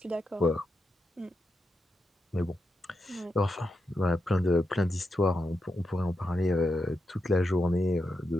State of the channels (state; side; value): normal; both; correlation 0.86